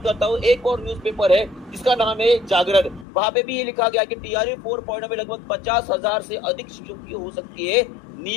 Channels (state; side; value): drops out; right; at 3.1 s